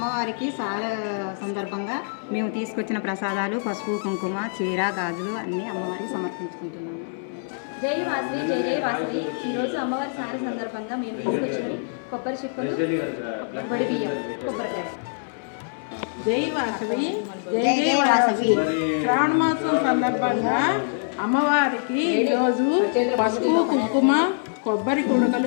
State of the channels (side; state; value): right; silent; 61 dB below the other